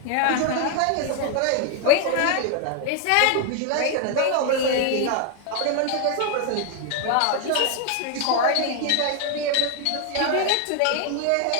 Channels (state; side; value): different; both; correlation 0.00